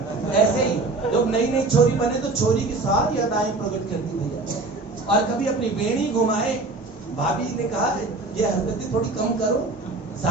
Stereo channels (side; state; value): left; quieter; 3.3 dB